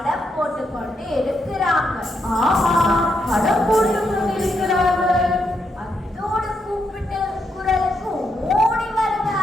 போட்டுக்கொண்டு இருக்கிறாங்க. ஆமா, படம் போட்டு கொண்டிருக்கிறார்கள். அதோடு கூப்பிட்டு குரலுக்கு ஓடி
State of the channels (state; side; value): normal; both; correlation 0.80